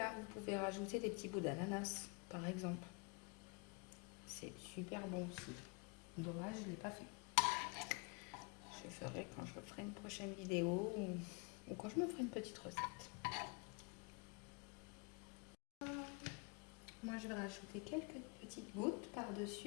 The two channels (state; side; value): quieter; right; 32.5 dB